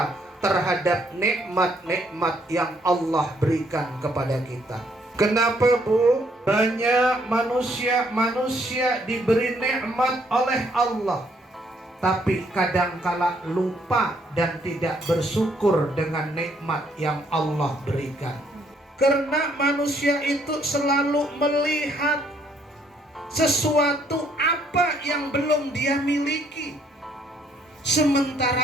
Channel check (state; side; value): normal; both; correlation 0.68